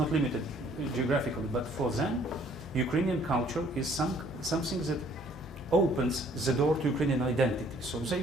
limited geographically, but for them, Ukrainian culture is something that opens the door to Ukrainian identity. So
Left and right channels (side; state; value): both; normal; correlation 0.60